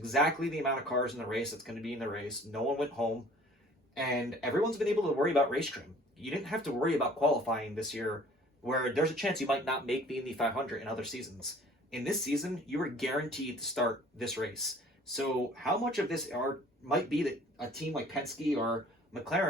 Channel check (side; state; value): both; normal; correlation 0.51